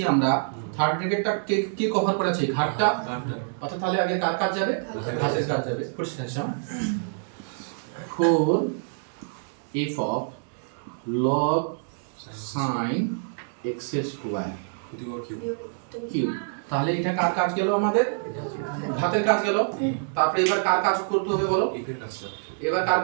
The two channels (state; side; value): silent; left; digital silence